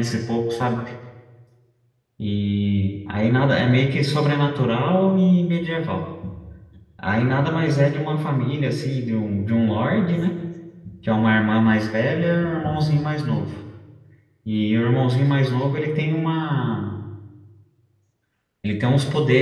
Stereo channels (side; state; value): both; identical; correlation 1.00